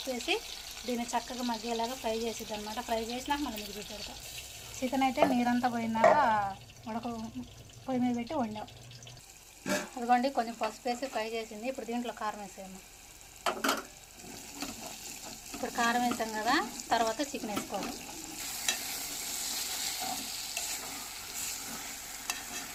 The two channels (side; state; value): both; identical; correlation 1.00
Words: వేసి దీన్ని చక్కగా మగ్గేలాగా ఫ్రై చేసిద్ది అనమాట. ఫ్రై చేసినాక మళ్ళీ మిగిలి పెడతాం. చికెన్ అయితే నీరంతా పోయినాక పొయ్యి మీద పెట్టి వండాం. అదిగోండి, కొంచెం పసుపు వేసి ఫ్రై చేసింది. ఇప్పుడు దీంట్లో కారం వేసాము. ఇప్పుడు కారం వేసాం కదా, తర్వాత చికెన్ వేసుకోవాలి.